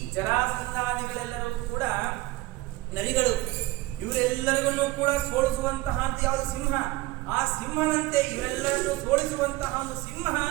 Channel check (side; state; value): left; quieter; 18.7 dB